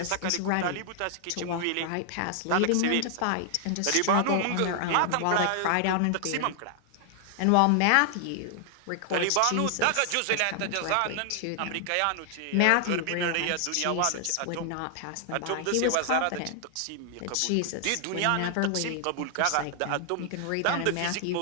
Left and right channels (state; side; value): different; both; correlation 0.00